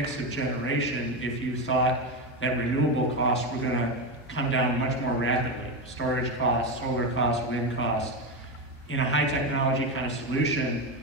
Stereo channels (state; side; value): normal; both; correlation 0.14